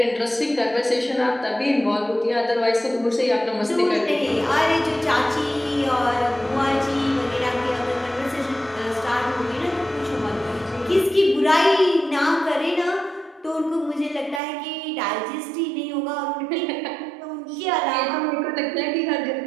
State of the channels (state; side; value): drops out; left; at 14.4 s